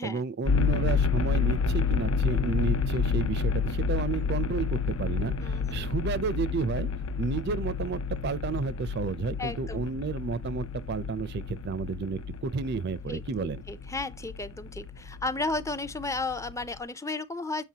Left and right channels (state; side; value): normal; both; correlation 0.43